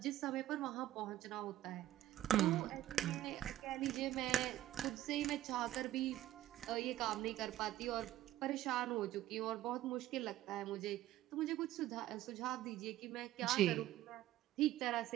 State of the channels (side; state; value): left; quieter; 14.1 dB